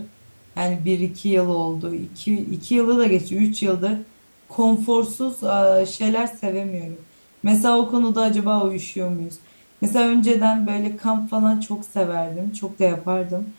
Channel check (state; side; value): inverted; both; correlation -1.00